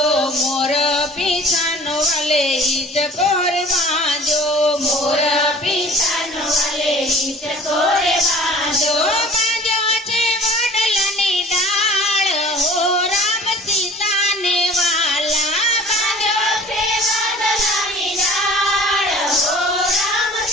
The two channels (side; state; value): both; normal; correlation 0.46